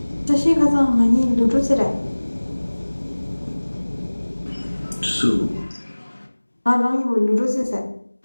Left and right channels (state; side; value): inverted; both; correlation -1.00